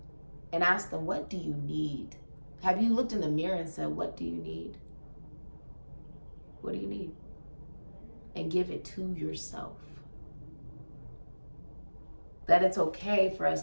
and asked them, what do you need? Have you looked in the mirror and said, what do you need? What do you need? And give it to yourself. That it's okay for us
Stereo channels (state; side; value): inverted; both; correlation -1.00